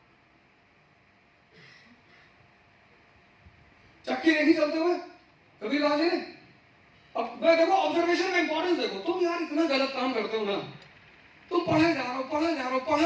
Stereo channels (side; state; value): both; identical; correlation 1.00